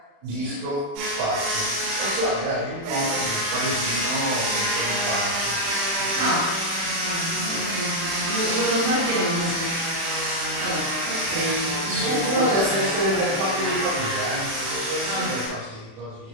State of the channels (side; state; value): left; late; 36 ms